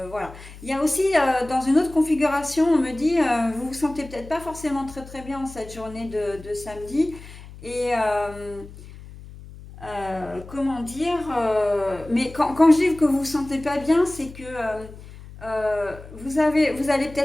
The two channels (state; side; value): noise; left; hum, 17 dB below the sound